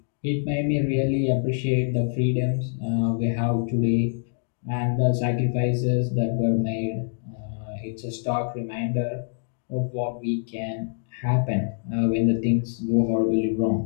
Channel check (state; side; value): silent; right; digital silence